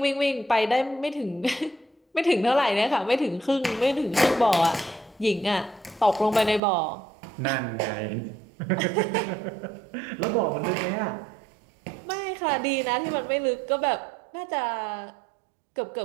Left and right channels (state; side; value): drops out; left; at 6.6 s